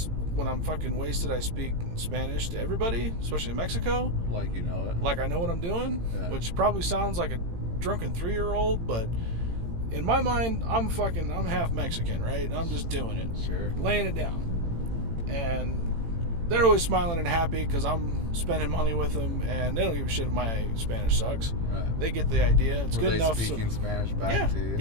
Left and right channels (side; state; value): left; late; 18 ms